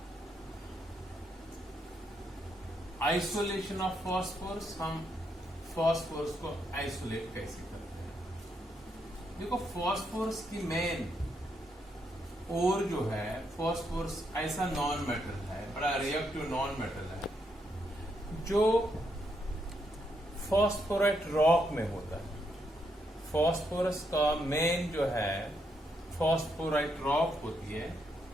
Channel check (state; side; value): normal; both; correlation 0.78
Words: Isolation of phosphorus. हम फॉस्फोरस को आइसोलेट कैसे करते हैं? देखो, फॉस्फोरस की मेन और जो है, फॉस्फोरस ऐसा नॉन मेटल है, बड़ा रिएक्टिव नॉन मेटल है, जो फॉस्फोराइट रॉक में होता है. फॉस्फोरस का मेन जो है फॉस्फोराइट रॉक होती है,